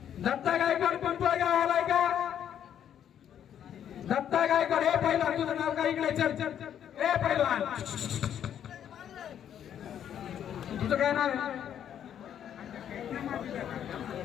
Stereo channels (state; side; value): quieter; right; 9.6 dB